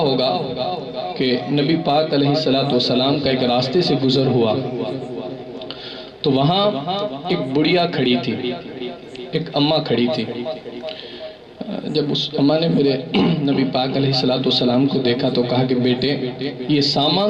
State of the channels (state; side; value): identical; both; correlation 1.00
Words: کہ نبی پاک علیہ السلام کا ایک راستے سے گزر ہوا تو وہاں ایک بڑھیا کھڑی تھی، ایک اماں کھڑی تھی۔ جب اس اماں نے میرے نبی پاک علیہ السلام کو دیکھا تو کہا کہ بیٹے یہ